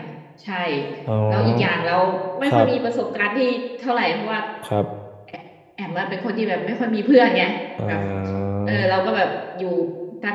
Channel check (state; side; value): identical; both; correlation 1.00